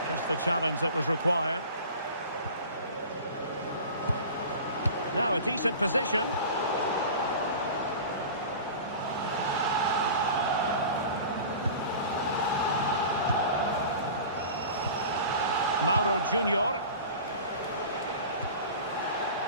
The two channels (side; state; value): both; inverted; correlation -0.37